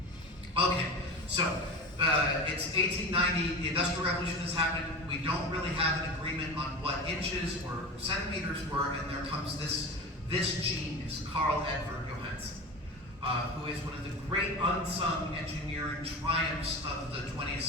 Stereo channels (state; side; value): normal; both; correlation 0.30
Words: Okay, so it's 1890, the Industrial Revolution has happened. We don't really have an agreement on what inches or centimeters were, and there comes this genius, Carl Edward Johansen, who is one of the great unsung engineering triumphs of the 20th